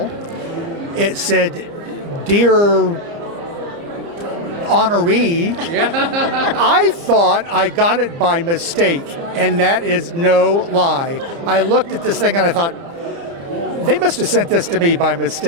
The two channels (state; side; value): late; left; 29 ms